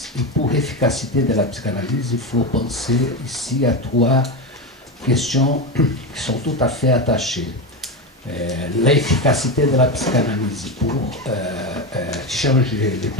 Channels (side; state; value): both; normal; correlation 0.16